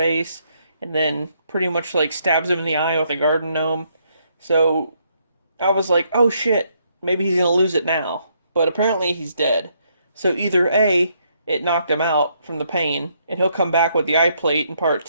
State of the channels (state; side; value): inverted; both; correlation -0.73